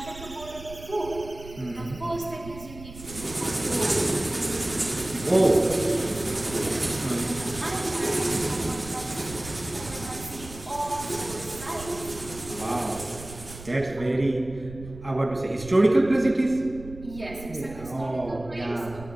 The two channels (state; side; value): noise; right; rumble, 15 dB below the sound